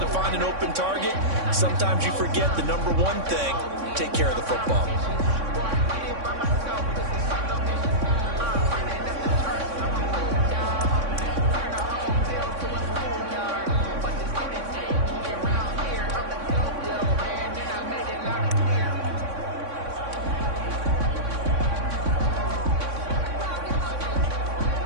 find an open target. Sometimes you forget the number one thing, take care of the football.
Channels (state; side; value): late; left; 3.6 ms